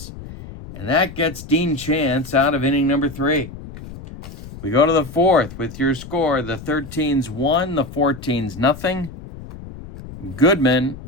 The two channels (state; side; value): noise; left; rumble, 14 dB below the sound